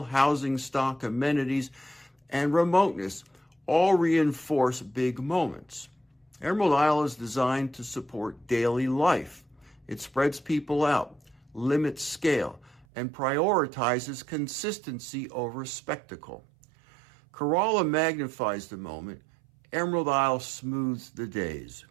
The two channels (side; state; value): left; drops out; at 12.9 s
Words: housing stock, amenities, and remoteness all reinforce big moments. Emerald Isle is designed to support daily life. It spreads people out, limits scale, and prioritizes consistency over spectacle. Corolla magnifies the moment. Emerald Isle smooths the days.